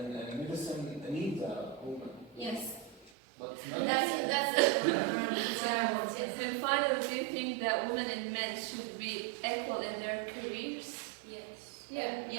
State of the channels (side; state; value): left; drops out; at 3.1 s